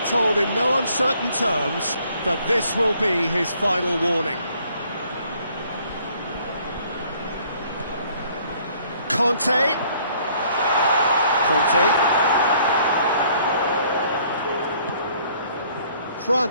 told in no uncertain terms that this will be his final warning. Conte.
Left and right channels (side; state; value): both; inverted; correlation -0.61